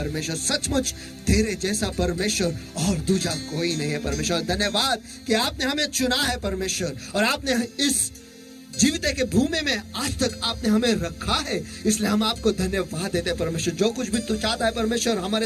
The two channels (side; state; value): both; identical; correlation 1.00